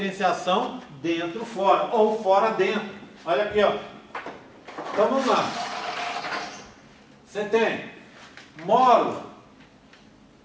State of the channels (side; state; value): both; identical; correlation 1.00